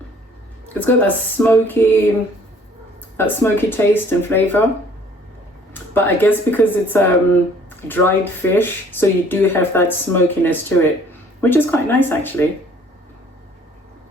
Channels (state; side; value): normal; both; correlation 0.57